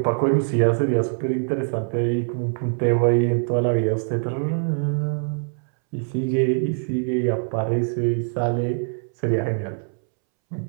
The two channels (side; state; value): left; silent; 63 dB below the other